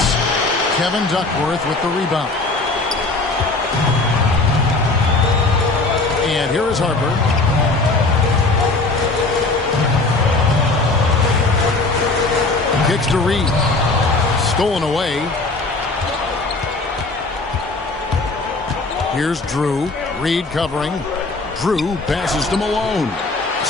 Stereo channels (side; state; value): right; quieter; 3.3 dB